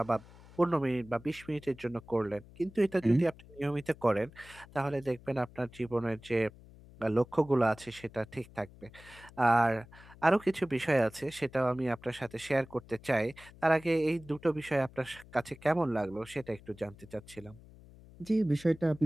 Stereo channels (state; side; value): noise; left; hum, 21 dB below the sound